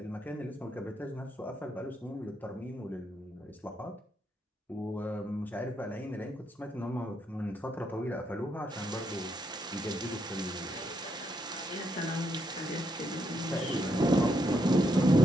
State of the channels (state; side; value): normal; both; correlation 0.77